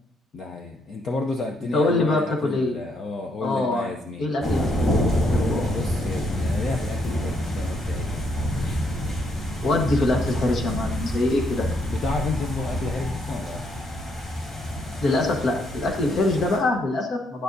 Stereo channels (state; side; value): normal; both; correlation 0.73